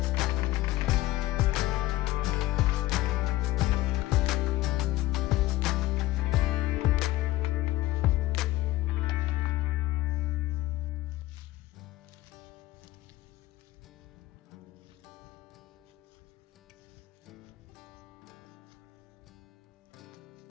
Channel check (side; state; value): right; quieter; 16.6 dB